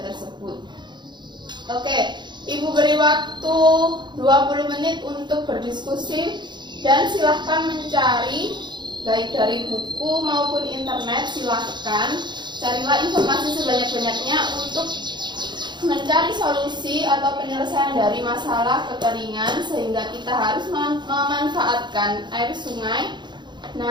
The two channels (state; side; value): late; left; 0.22 ms